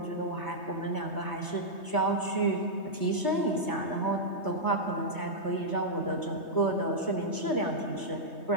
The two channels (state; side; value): late; right; 3.2 ms